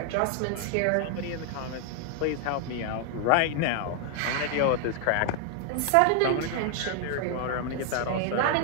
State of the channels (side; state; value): both; different; correlation 0.00